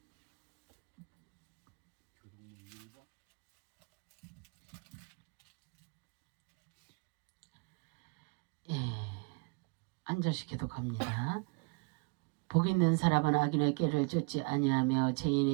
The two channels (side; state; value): left; quieter; 31.6 dB